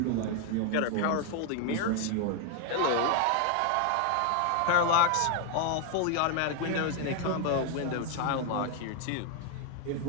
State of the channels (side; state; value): both; different; correlation 0.01